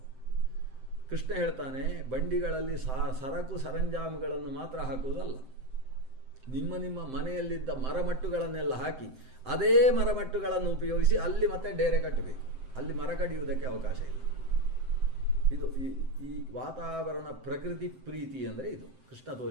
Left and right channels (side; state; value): left; late; 7.7 ms